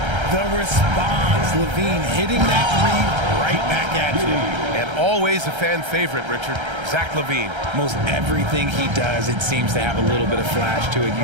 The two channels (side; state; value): left; late; 1.3 ms